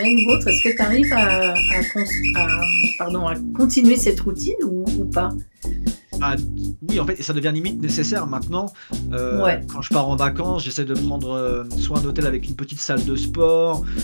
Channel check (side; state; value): both; inverted; correlation -1.00